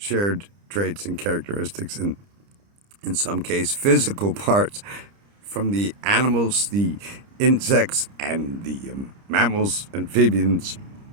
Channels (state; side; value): late; left; 30 ms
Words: traits and characteristics, and in some case physical parts from the animals, the insects, and the mammals, amphibians,